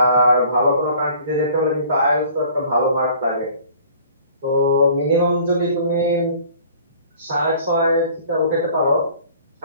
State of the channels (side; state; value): both; inverted; correlation -0.51